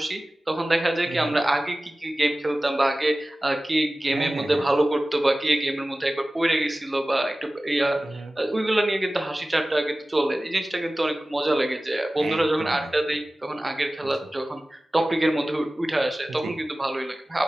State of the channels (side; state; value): both; normal; correlation 0.97